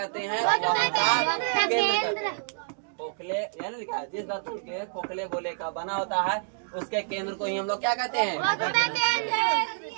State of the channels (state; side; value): silent; left; digital silence